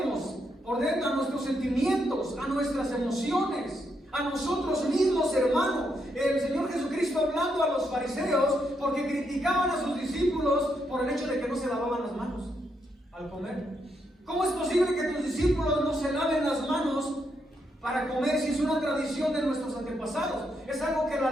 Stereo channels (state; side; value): normal; both; correlation 0.79